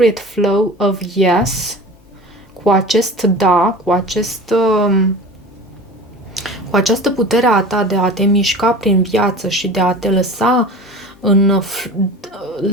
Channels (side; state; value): left; noise; hum, 30 dB below the sound